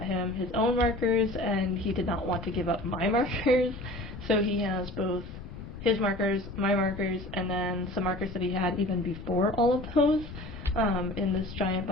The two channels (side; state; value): left; noise; rumble, 12 dB below the sound